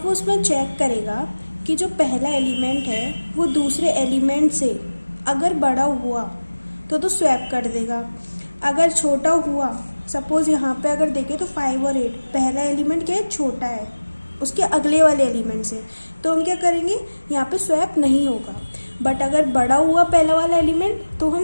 वो उसमें चेक करेगा कि जो पहला एलिमेंट है वो दूसरे एलिमेंट से अगर बड़ा हुआ तो स्वैप कर देगा। अगर छोटा हुआ, सपोज यहाँ पे अगर देखें तो 5 और 8, पहला एलिमेंट क्या है, छोटा है उसके अगले वाले एलिमेंट से, तो हम क्या करेंगे, यहाँ पे स्वैप नहीं होगा। बट अगर बड़ा हुआ पहला वाला एलिमेंट तो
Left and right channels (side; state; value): both; inverted; correlation -1.00